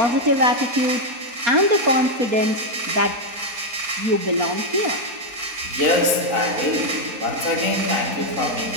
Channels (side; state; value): left; late; 4.0 ms